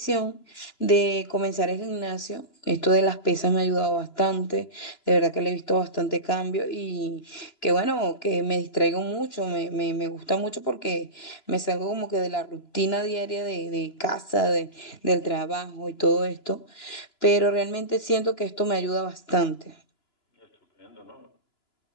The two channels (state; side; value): late; right; 2.9 ms